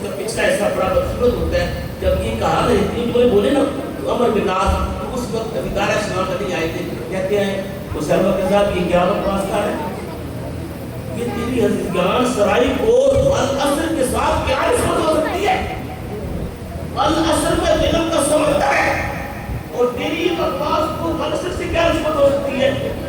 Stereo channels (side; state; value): both; identical; correlation 1.00